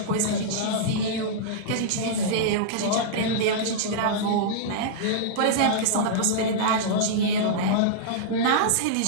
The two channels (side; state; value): both; different; correlation -0.02